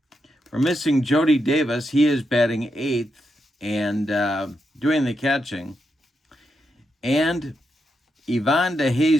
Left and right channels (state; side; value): normal; both; correlation 0.83